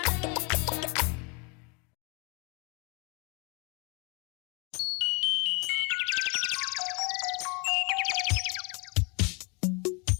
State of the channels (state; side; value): quieter; right; 31.7 dB